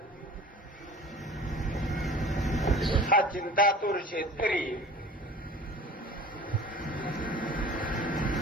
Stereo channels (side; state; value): both; normal; correlation 0.42